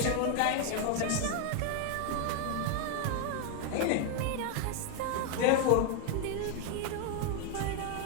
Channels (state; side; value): different; both; correlation 0.01